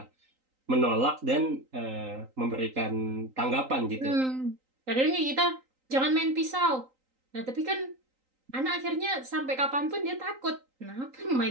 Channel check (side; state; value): left; late; 3.9 ms